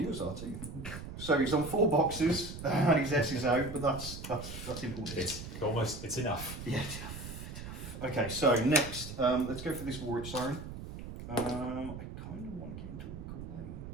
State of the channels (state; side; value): noise; right; rumble, 10 dB below the sound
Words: are too. So he's on 4 boxes and his S is out, but that's important. It's enough. Yeah, it's enough. Okay, so next, let's go for this Warwitch Siren. I kind of want to get him to walk away,